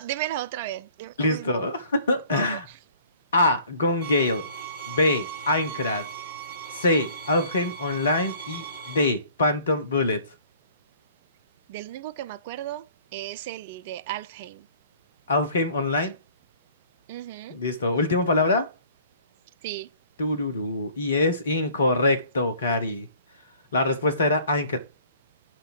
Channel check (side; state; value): both; inverted; correlation -0.52